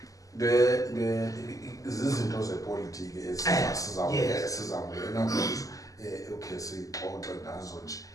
izinto zepolitiki esizawungena kuzo okay sixoxe ngazo nje.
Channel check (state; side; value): late; right; 0.17 ms